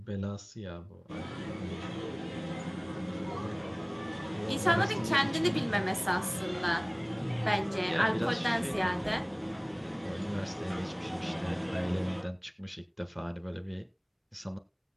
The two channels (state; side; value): identical; both; correlation 1.00